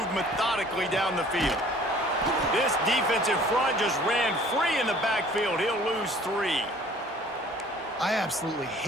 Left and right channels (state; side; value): normal; both; correlation 0.52